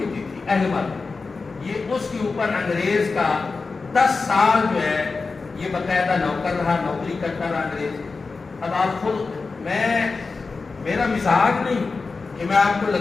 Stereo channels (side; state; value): right; quieter; 4.2 dB